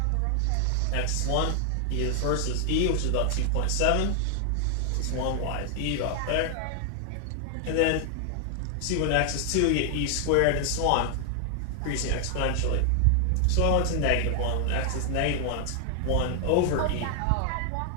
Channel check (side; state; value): both; different; correlation 0.00